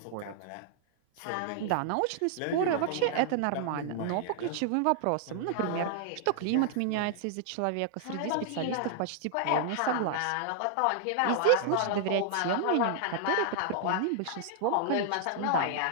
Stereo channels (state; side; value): different; both; correlation -0.01